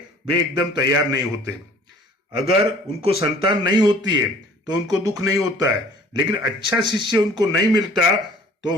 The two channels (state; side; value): normal; both; correlation 0.52